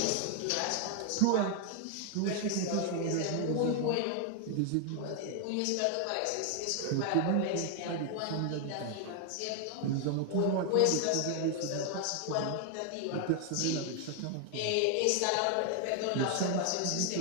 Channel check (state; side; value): different; both; correlation 0.00